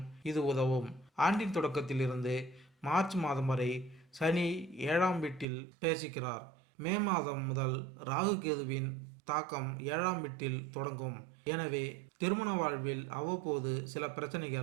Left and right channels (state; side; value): drops out; left; at 5.5 s